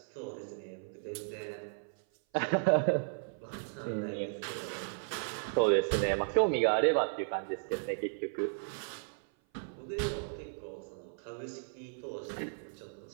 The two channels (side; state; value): left; silent; 54 dB below the other